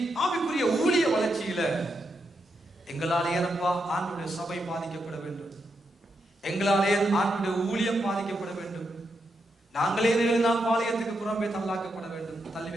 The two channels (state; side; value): normal; both; correlation 0.83